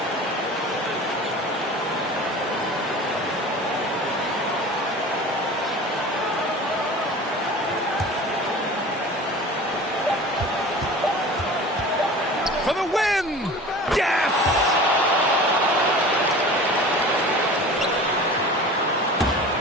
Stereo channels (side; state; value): both; normal; correlation 0.38